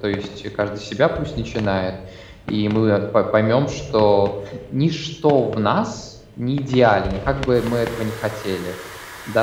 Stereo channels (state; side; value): identical; both; correlation 1.00